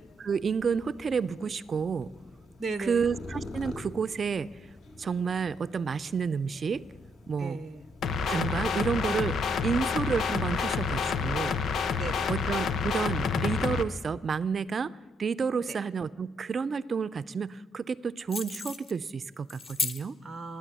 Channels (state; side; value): normal; both; correlation 0.75